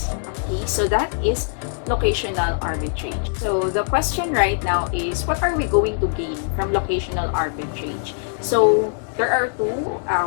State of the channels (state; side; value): silent; right; 64 dB below the other